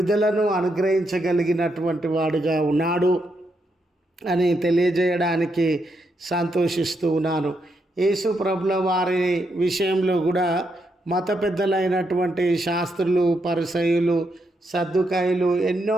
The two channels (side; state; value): both; normal; correlation 0.80